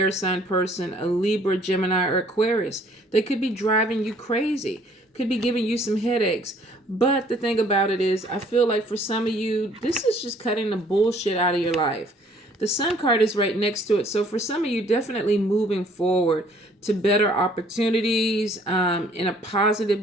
sign person, a Libra, Gemini, or Aquarius. They could be driving you crazy, could be giving you some headaches. But the thing about it is, I feel like for some of you, this is just cutting the bullshit out of your life. The Sun card is right next to it. So for some of you, definitely moving forward to better opportunities in a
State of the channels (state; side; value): normal; both; correlation 0.59